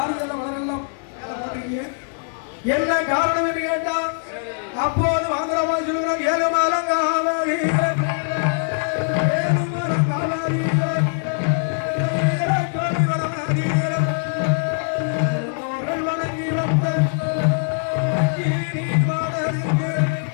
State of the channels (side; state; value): right; silent; digital silence